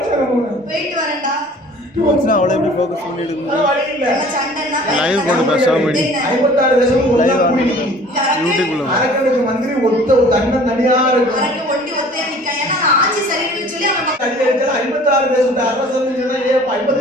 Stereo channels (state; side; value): normal; both; correlation 0.49